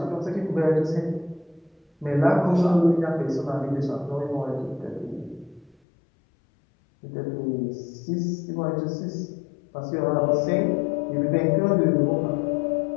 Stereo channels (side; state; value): right; drops out; at 5.8 s